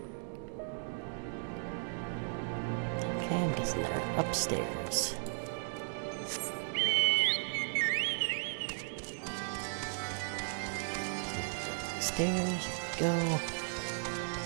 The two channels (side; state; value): left; silent; 54 dB below the other